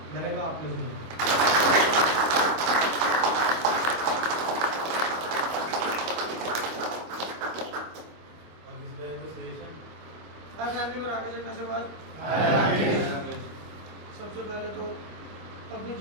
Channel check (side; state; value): left; late; 25 ms